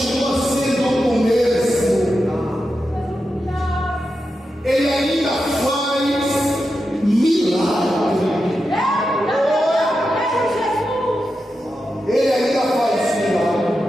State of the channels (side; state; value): both; normal; correlation 0.89